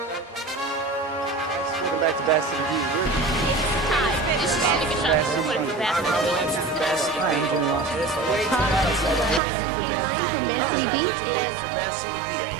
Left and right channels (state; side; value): drops out; left; at 9.4 s